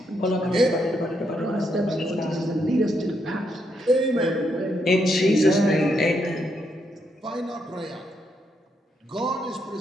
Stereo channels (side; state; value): both; normal; correlation 0.78